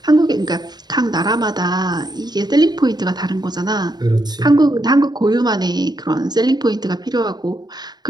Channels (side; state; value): left; late; 0.20 ms